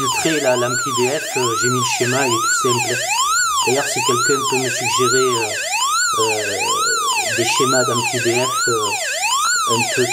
l'ampli BF. J'ai mis le schéma, il est tout simple. D'ailleurs, si quelqu'un peut me suggérer des schémas d'ampli BF un peu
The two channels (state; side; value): identical; both; correlation 1.00